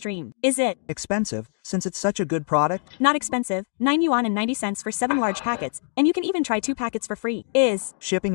Is it Expensive, since it's such a good product? not expensive? 9 yuan and 90 cents for 7 large packets, and you can even try 2 packets for free. Is Shipping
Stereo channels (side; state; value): right; silent; digital silence